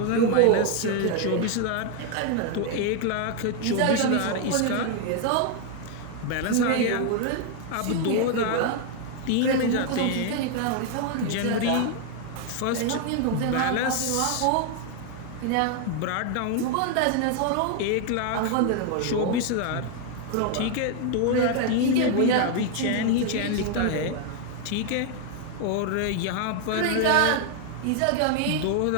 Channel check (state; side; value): different; both; correlation 0.01